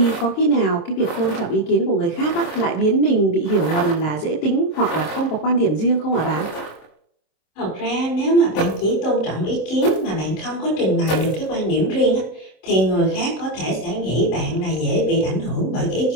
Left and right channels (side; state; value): right; late; 26 ms